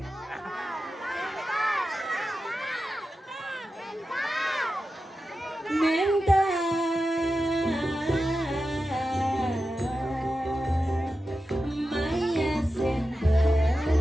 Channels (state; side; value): normal; both; correlation 0.92